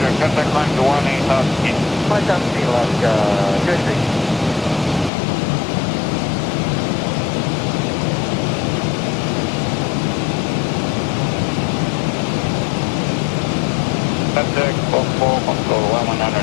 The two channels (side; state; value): right; drops out; at 5.1 s